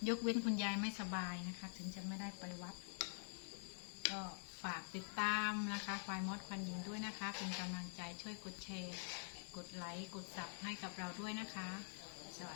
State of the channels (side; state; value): right; silent; digital silence